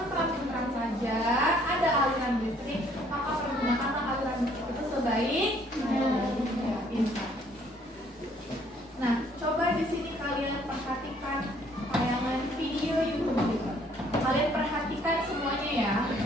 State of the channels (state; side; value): normal; both; correlation 0.62